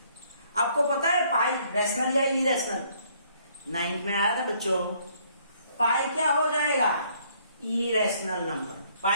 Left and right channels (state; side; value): inverted; both; correlation -0.65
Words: आपको पता है पाई रैशनल या इरेशनल? 9th में आया था बच्चों। पाई क्या हो जाएगा? Irrational number.